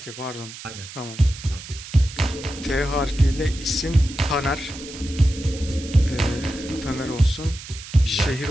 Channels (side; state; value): right; noise; hiss, 14 dB below the sound